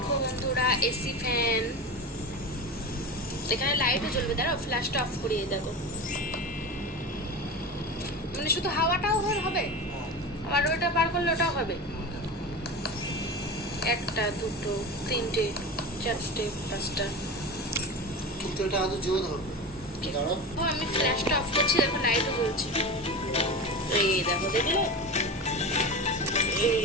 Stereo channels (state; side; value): normal; both; correlation 0.26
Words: বন্ধুরা, এসি ফ্যান, এখানে লাইটও জ্বলবে। দাঁড়াও, ফ্ল্যাশটা অফ করিয়ে দেখো। মানে শুধু হাওয়াটাও হবে, আবার ওটা পার করলে ওটাও হবে। একটা, দুটো, তিনটে, চারটে, পাঁচটা। কিন্তু এটা আদৌ জোর হবে। আমি ফ্ল্যাশটা অফ করছি, দেখো লাইটও জ্বলছে। এই দেখো, দেখলে? এই